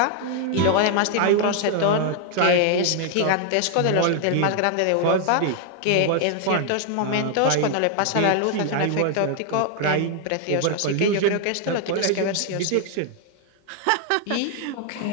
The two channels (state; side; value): different; both; correlation 0.00